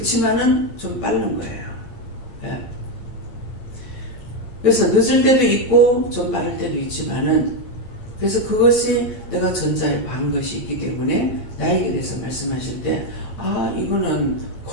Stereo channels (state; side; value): late; right; 8.7 ms